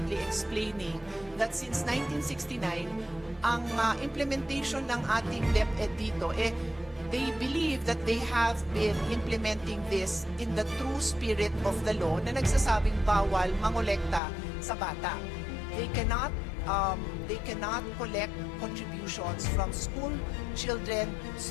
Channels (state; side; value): drops out; right; at 14.2 s